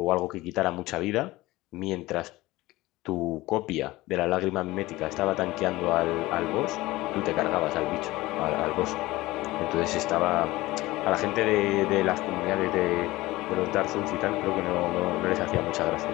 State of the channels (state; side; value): quieter; right; 19.0 dB